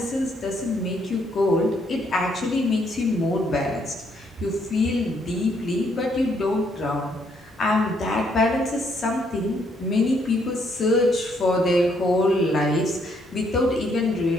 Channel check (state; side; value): normal; both; correlation 0.71